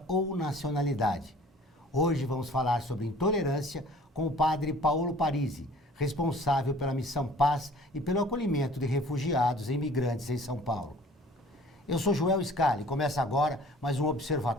ou nacionalidade. Hoje vamos falar sobre intolerância com o padre Paulo Parisi, responsável pela Missão Paz e pelo acolhimento de refugiados e imigrantes em São Paulo. Eu sou Joel Scali e começa agora mais um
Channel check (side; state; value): both; normal; correlation 0.50